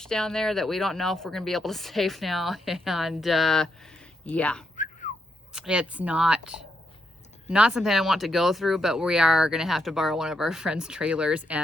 down there that we don't know if we're gonna be able to save now. And yeah, it's not something I want to go through, but we are going to have to borrow one of our friends' trailers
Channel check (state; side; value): normal; both; correlation 0.80